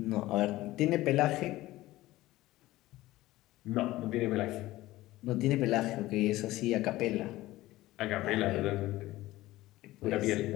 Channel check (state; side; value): quieter; right; 17.2 dB